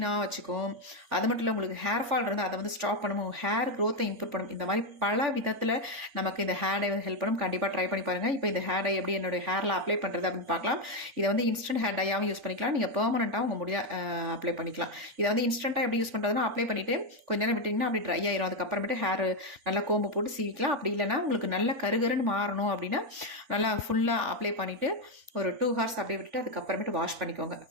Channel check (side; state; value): left; late; 3.5 ms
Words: வச்சுக்கும். அது மட்டும் இல்லை, உங்களுக்கு ஹேர் ஃபால் இருந்தால் அதை வந்து ஸ்டாப் பண்ணும், ஹேர் க்ரோத்தை இம்ப்ரூவ் பண்ணும். இந்த மாதிரி பல விதத்தில் நமக்கு இந்த ஹேர் டை வந்து ஹெல்ப் பண்ணும். கண்டிப்பாக ட்ரை பண்ணி பாருங்கள். இப்போ இந்த ஹேர் டை எப்படி என்னுடைய ஹேரில் அப்ளை பண்ணுறது அப்படின்னு பார்க்கலாம். இதை வந்து இன்ஸ்டன்ட் ஹேர் டையாகவும் யூஸ் பண்ணிக்கலாம், நீங்கள் பெர்மனெண்ட்டாக உங்கள் முடிய அப்ளை பண்ணிக்கலாம். இதை வந்து இன்ஸ்டண்ட்டாக எப்படி யூஸ் பண்ணுறதுனா, அப்ளை பண்ணிவிட்டு கொஞ்ச நேரம் விட்டிங்கன்னா அப்படி ட்ரை ஆயிரும். அதுக்கப்புறமேட்டு ஹேர் நல்லா கோம்பு போட்டு சீவிக்கலாம். அப்படி இல்லைனா உங்களுக்கு நல்ல கருகருன்னு மாறணும் அப்படின்னா நல்லா ஃபுல்லாக அப்ளை பண்ணிவிட்டு ஒரு 2 hours அப்படியே விட்டுட்டு அதுக்கப்புறமேட்டு வாஷ் பண்ணிக்கோங்க.